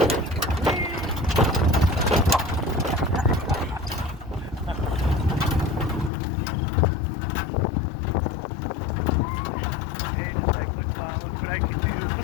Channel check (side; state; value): right; drops out; at 6.1 s